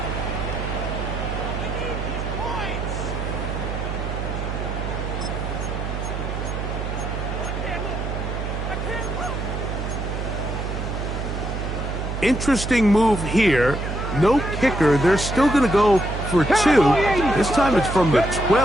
Interesting move here. No kicker. They're still going to go for 2. This time it's from the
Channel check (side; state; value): right; noise; hum, 4 dB below the sound